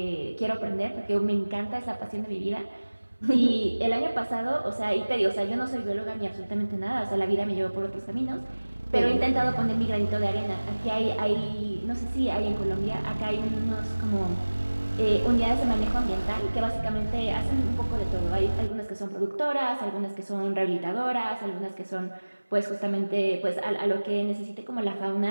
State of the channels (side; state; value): both; inverted; correlation -1.00